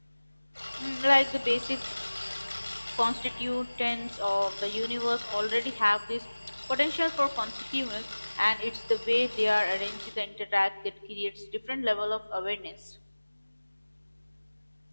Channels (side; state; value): both; inverted; correlation -1.00